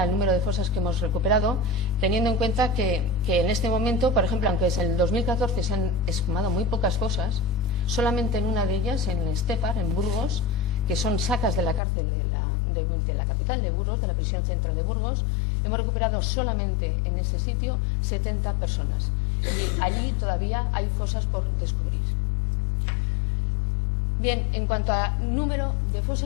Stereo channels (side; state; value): right; drops out; at 11.8 s